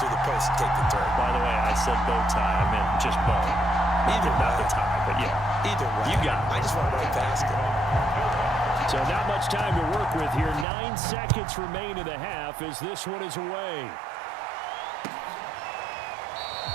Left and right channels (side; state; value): left; drops out; at 10.7 s